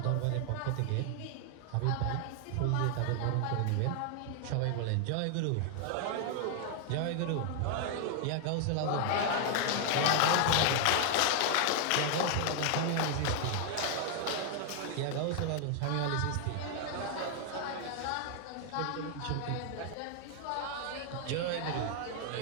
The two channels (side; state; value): both; different; correlation 0.00